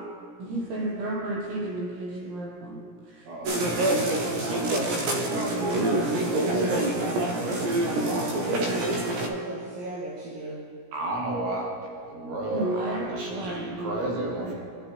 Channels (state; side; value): late; left; 17 ms